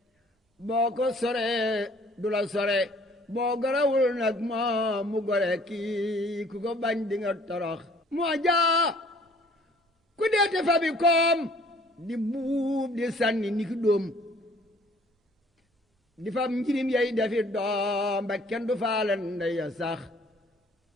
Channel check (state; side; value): normal; both; correlation 0.56